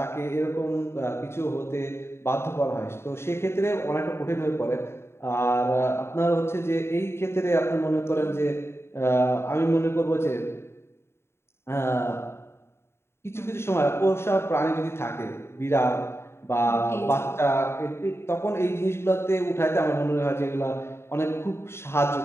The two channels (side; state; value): right; late; 0.12 ms